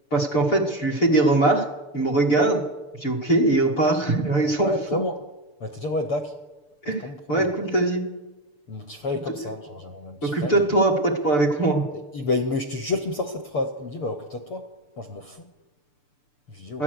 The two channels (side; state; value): right; late; 6.8 ms